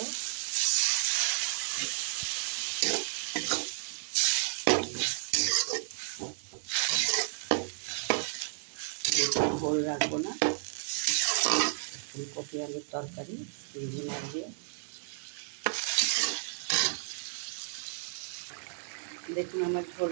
ঝোল রাখবো না, ফুলকপি আলুর তরকারি চিংড়ি মাছ দিয়ে। দেখুন আমার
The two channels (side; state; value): left; silent; digital silence